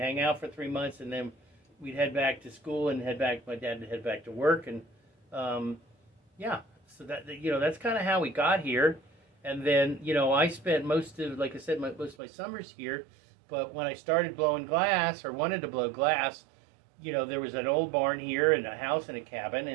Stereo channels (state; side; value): drops out; left; at 12.2 s